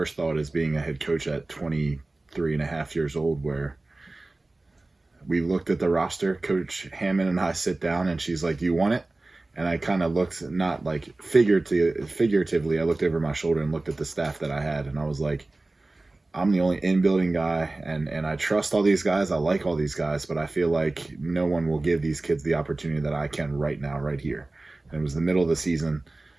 thought as being a head coach at 23 and a half years old, where we looked at the roster. Coach Hammond and I sit down, and she's like, "Do you want it?" And I kind of looked, not like figuratively, I looked over my shoulder and looked at the staff that I had, and I was like, I'm the only in-building guy, and I trust all these guys. I like all these guys, but I feel like no one will give these kids the opportunity that I can right now, right here. And it was the middle of the season.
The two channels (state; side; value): quieter; left; 3.0 dB